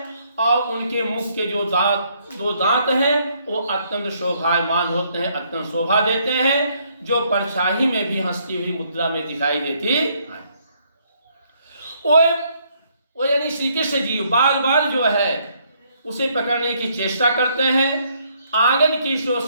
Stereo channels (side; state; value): both; inverted; correlation -0.69